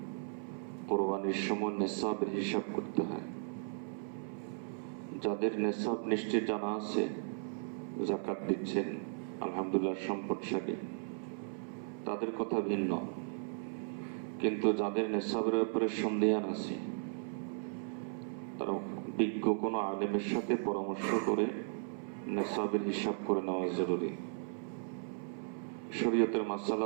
কোরবানির সময় নেসাবের হিসাব করতে হয়। যাদের নেসাব নিশ্চিত জানা আছে, যাকাত দিচ্ছেন, আলহামদুলিল্লাহ সম্পদশালী, তাদের কথা ভিন্ন। কিন্তু যাদের নেসাবের ব্যাপারে সন্দেহান আছে, তারা বিজ্ঞ কোনো আলেমের সাথে পরামর্শ করে নেসাবের হিসাব করে নেওয়া জরুরি। শরীয়তের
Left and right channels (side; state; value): left; silent; 54 dB below the other